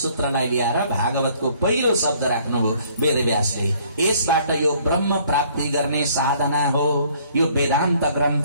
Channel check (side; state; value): both; inverted; correlation -0.60